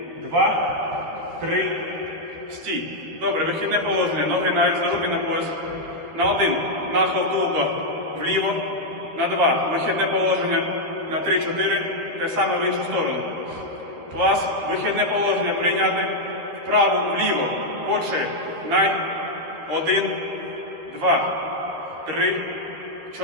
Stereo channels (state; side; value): late; left; 13 ms